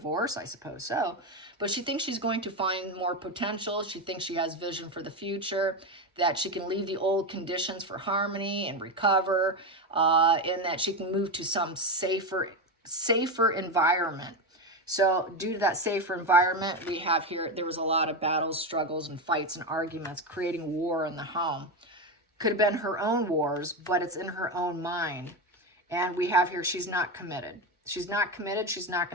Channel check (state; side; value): normal; both; correlation 0.14